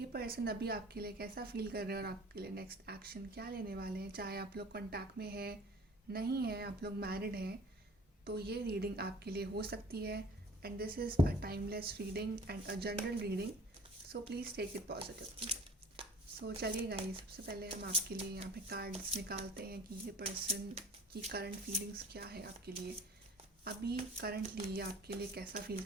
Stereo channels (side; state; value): both; normal; correlation 0.46